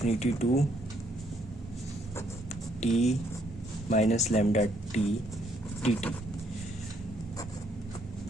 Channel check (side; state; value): both; normal; correlation 0.70